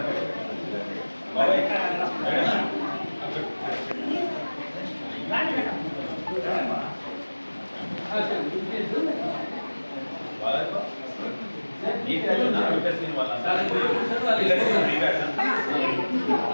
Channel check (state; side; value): inverted; both; correlation -1.00